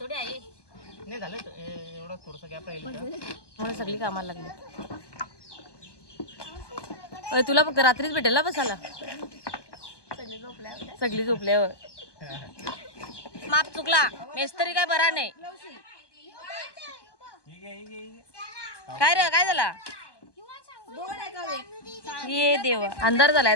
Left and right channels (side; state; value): right; late; 1.2 ms